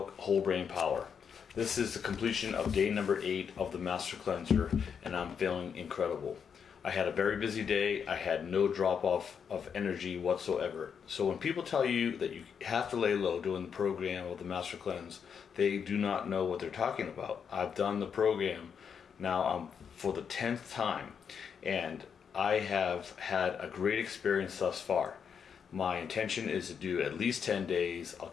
Whole Brain Power. This is the completion of day number 8 of the Master Cleanser, and I'm feeling incredible. I had a very busy day. I had no drop off of energy whatsoever. So when people tell you that you have to lay low doing the program of the Master Cleanse, they do not know what they're talking about. I've done the program now for the 10th time, and I have had a great experience thus far. My intention is to do at least 10 days. I'll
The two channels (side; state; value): right; quieter; 7.0 dB